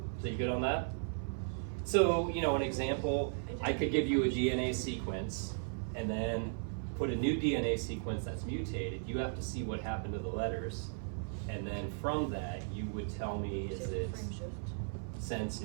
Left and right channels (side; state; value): left; silent; 54 dB below the other